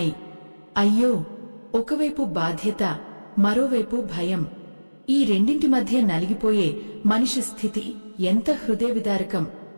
అయ్యో! ఒకవైపు బాధ్యత, మరోవైపు భయం. ఈ రెండింటి మధ్య నలిగిపోయే మనిషి స్థితి ఎంత హృదయవిదారకం.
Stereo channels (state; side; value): inverted; both; correlation -1.00